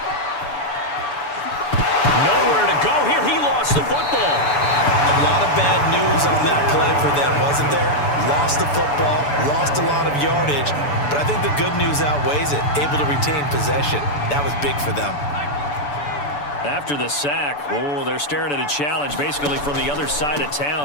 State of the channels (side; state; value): right; late; 6.9 ms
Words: Nowhere to go here. He lost the football. A lot of bad news on that play for them, wasn't there? Lost the football, lost a lot of yardage, but I think the good news outweighs it. Able to retain possession. That was big for them. After the sack, they're staring at a challenge basically from the other side of